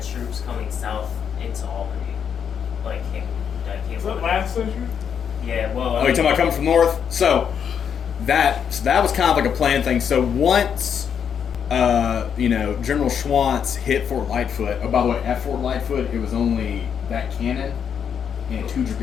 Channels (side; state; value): right; quieter; 7.7 dB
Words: troops coming south into Albany. Is that last century? Yeah, well. Oh, you're talking about coming from north? So that was kind of like a planned thing. So once General Schwantz hit Fort Lightfoot. Oh, by the way, at Fort Lightfoot, it was only that cannon and 2